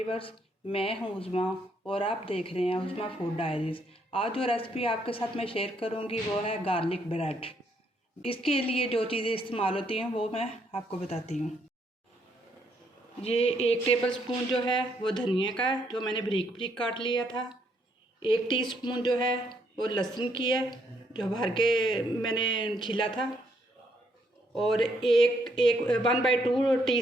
मैं हूँ उज़मा और आप देख रहे हैं उज़मा फूड डायरीज़। आज जो रेसिपी आपके साथ मैं शेयर करूँगी वो है गार्लिक ब्रेड। इसके लिए जो चीज़ें इस्तेमाल होती हैं वो मैं आपको बताती हूँ। ये 1 टेबल स्पून जो है वो धनिया का है, जो मैंने बारीक बारीक काट लिया था। 1 टीस्पून जो है वो लहसुन की है, जो भर के मैंने छीला था। और 1/2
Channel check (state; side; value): normal; both; correlation 0.72